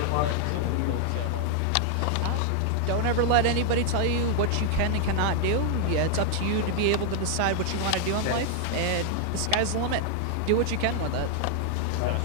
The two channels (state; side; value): different; both; correlation 0.00